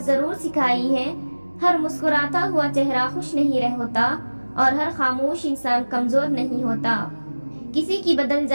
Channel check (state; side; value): inverted; both; correlation -1.00